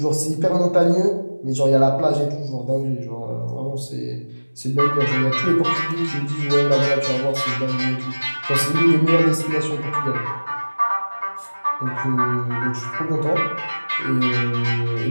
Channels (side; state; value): both; inverted; correlation -1.00